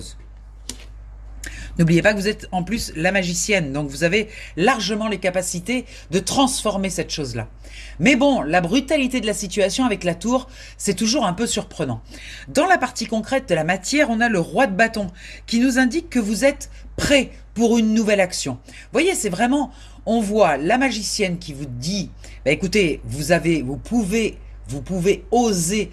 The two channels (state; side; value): identical; both; correlation 1.00